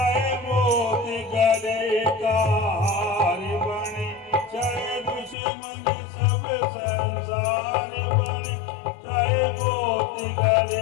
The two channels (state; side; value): drops out; right; at 5.4 s